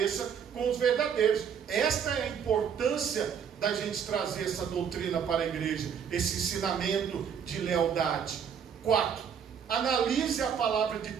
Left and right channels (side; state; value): left; quieter; 7.6 dB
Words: com os verdadeiros. Esta é a importância da gente trazer essa doutrina para a igreja, esse ensinamento de lealdade. 4. Analise a palavra de